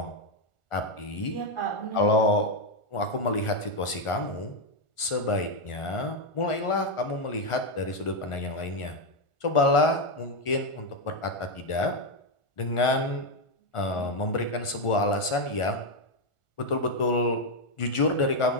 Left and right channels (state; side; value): late; right; 1.4 ms